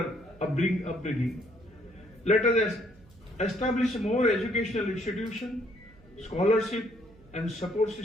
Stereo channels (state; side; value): noise; right; hum, 25 dB below the sound